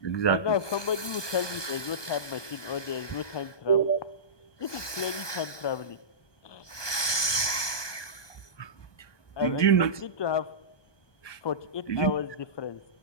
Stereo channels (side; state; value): right; late; 1.2 ms